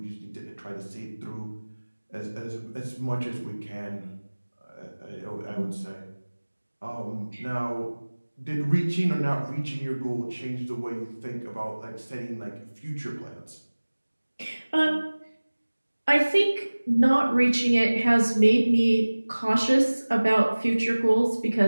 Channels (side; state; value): both; inverted; correlation -1.00